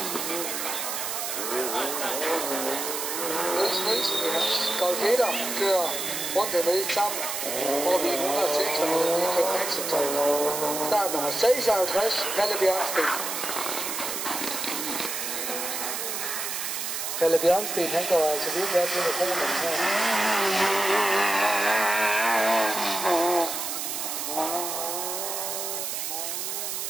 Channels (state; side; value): noise; right; hiss, 3 dB below the sound